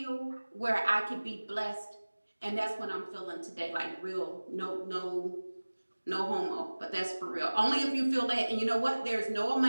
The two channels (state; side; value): inverted; both; correlation -1.00